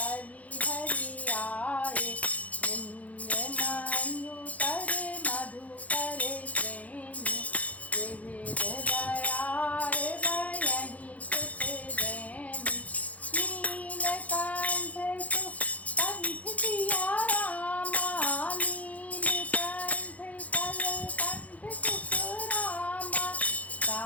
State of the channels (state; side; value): late; right; 0.071 ms